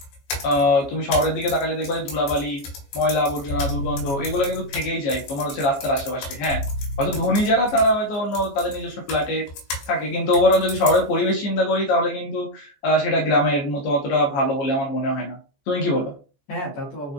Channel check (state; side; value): late; right; 14 ms